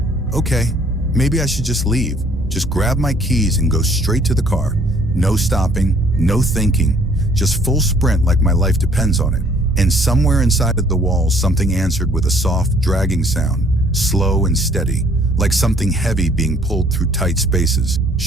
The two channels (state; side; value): normal; both; correlation 0.60